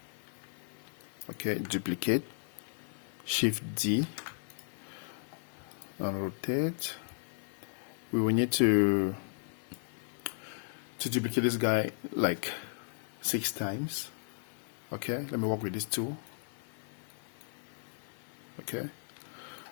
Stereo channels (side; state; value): right; silent; digital silence